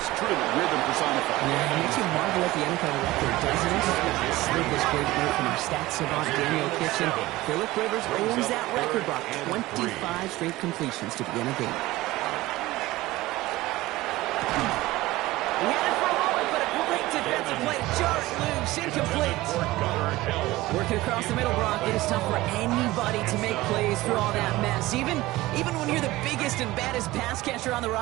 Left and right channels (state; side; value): quieter; left; 18.3 dB